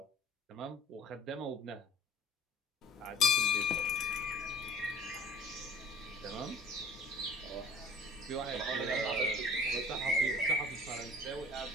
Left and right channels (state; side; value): normal; both; correlation 0.47